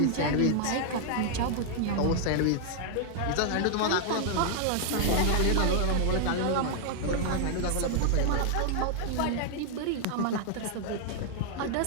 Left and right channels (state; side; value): different; both; correlation 0.00